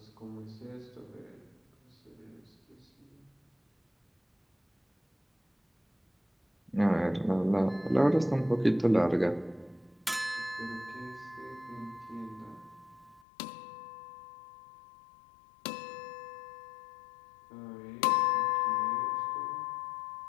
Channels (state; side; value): drops out; right; at 13.2 s